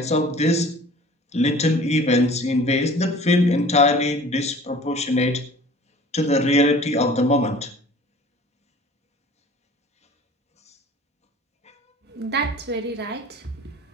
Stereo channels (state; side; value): normal; both; correlation 0.46